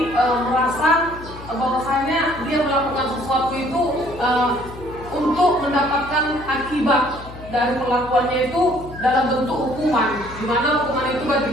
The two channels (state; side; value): noise; left; hum, 15 dB below the sound